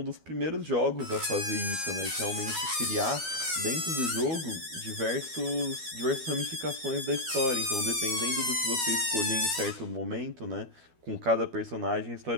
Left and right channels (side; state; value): left; late; 12 ms